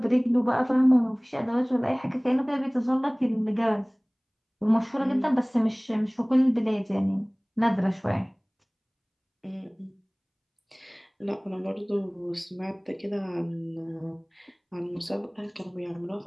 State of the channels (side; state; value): both; identical; correlation 1.00